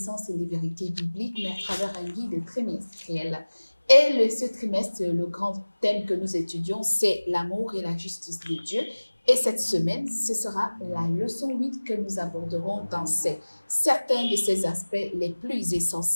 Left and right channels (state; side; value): inverted; both; correlation -1.00